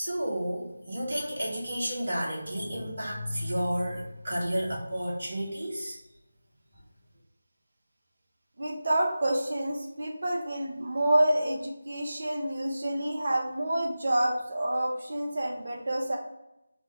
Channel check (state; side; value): inverted; both; correlation -0.95